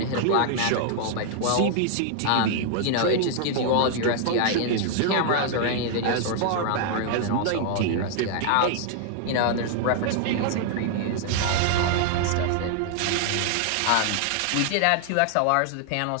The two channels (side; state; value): both; different; correlation 0.00